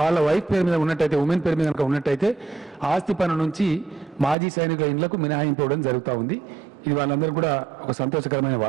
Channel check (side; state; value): left; drops out; at 4.4 s